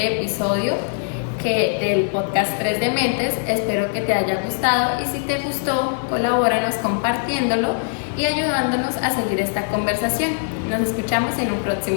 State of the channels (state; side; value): silent; right; digital silence